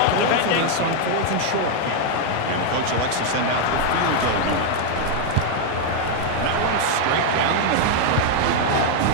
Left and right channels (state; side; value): different; both; correlation 0.01